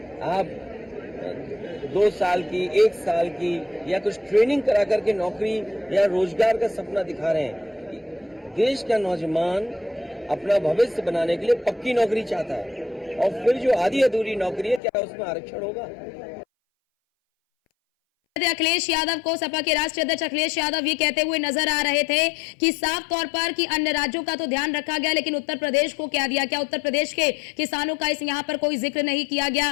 आप 2 साल की 1 साल की या कुछ ट्रेनिंग करा करके नौकरी या रोजगार का सपना दिखा रहे हैं। देश का नौजवान अपना भविष्य बनाने के लिए पक्की नौकरी चाहता है, और फिर जो आधी अधूरी नौकरी है क्या उसमें आरक्षण होगा? अखिलेश यादव को सपा के राष्ट्रीय अध्यक्ष अखिलेश यादव ये कहते हुए नजर आ रहे थे कि साफ तौर पर कि अन्य राज्यों का तो ध्यान रखा गया लेकिन उत्तर प्रदेश को क्या दिया, क्या उत्तर प्रदेश के किसानों का इस यहाँ पर कोई जिक्र नहीं किया गया।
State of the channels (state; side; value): drops out; right; at 14.8 s